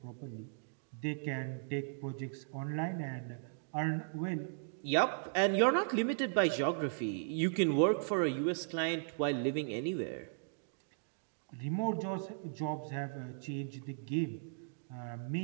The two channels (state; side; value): silent; left; digital silence